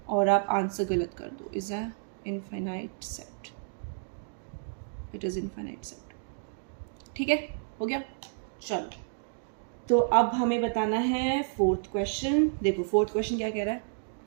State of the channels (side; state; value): left; silent; digital silence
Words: और आप आंसर गलत कर दो। Is a infinite set, it is infinite set, ठीक है, हो गया। चलो, तो अब हमें बताना है फोर्थ क्वेश्चन। देखो, फोर्थ क्वेश्चन क्या कह रहा है?